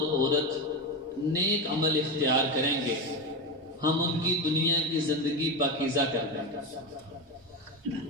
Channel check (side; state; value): both; normal; correlation 0.17